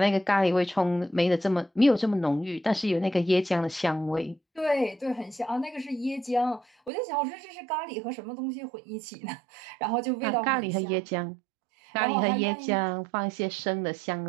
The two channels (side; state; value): left; drops out; at 6.9 s